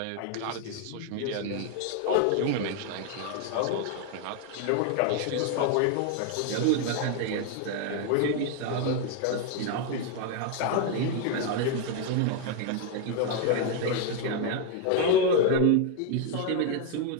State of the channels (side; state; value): both; different; correlation 0.01